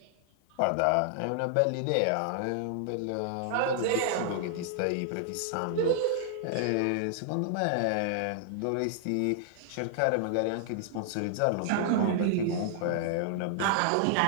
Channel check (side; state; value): both; different; correlation -0.01